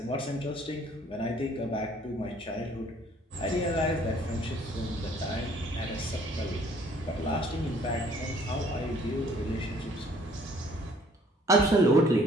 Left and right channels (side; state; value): both; normal; correlation 0.58